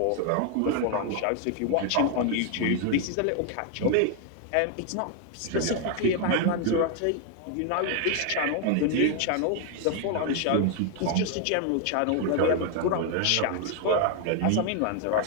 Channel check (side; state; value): both; different; correlation 0.00